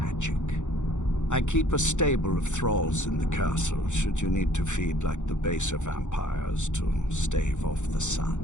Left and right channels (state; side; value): late; right; 0.85 ms